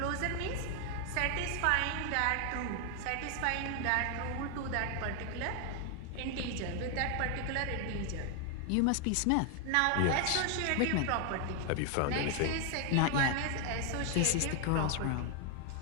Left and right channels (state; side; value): different; both; correlation 0.00